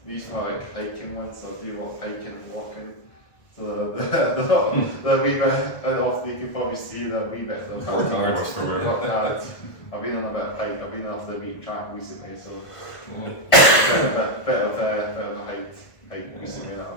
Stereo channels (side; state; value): right; late; 1.5 ms